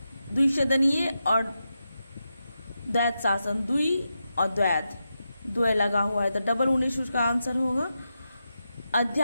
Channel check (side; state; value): both; inverted; correlation -0.88